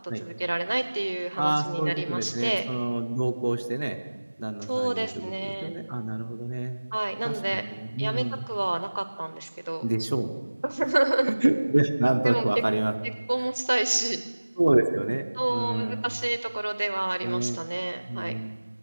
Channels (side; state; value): both; inverted; correlation -1.00